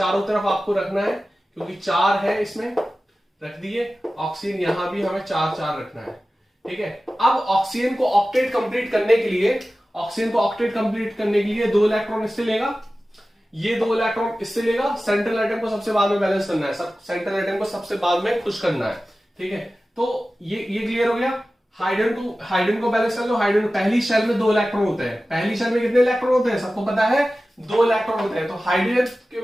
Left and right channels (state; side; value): normal; both; correlation 0.95